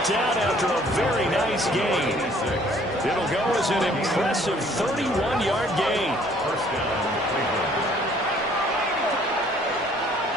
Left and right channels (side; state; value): both; normal; correlation 0.59